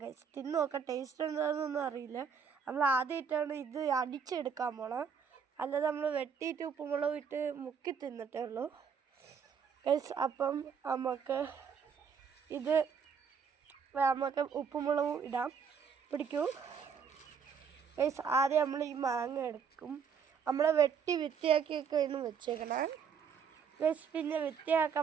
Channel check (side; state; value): left; quieter; 6.7 dB